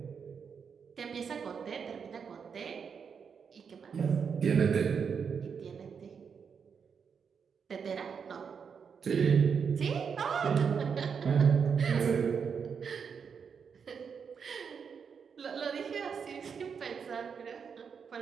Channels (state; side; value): quieter; left; 6.5 dB